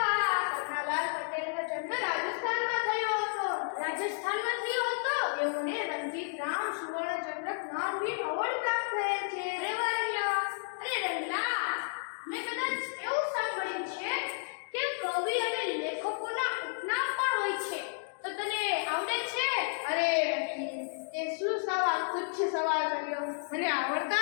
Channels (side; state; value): right; silent; digital silence